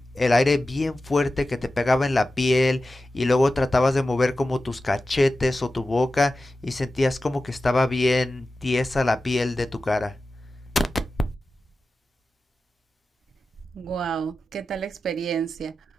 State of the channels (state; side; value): normal; both; correlation 0.93